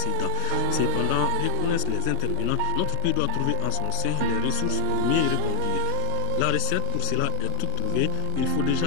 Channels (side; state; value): both; different; correlation 0.00